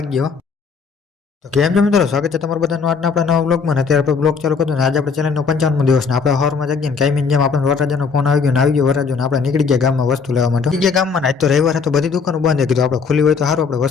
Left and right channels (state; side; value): quieter; right; 5.4 dB